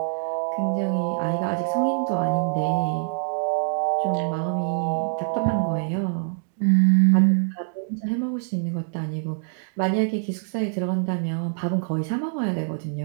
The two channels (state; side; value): silent; left; digital silence